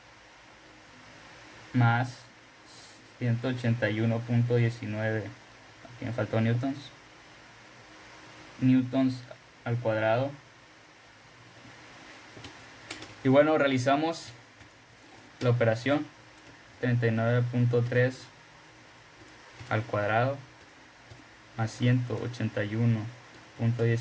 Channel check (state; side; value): identical; both; correlation 1.00